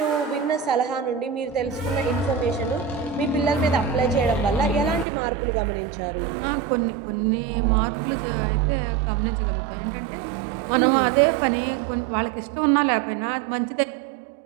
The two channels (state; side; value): drops out; left; at 5.1 s